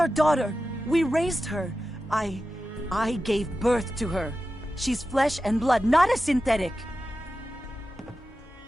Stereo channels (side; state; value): both; normal; correlation 0.92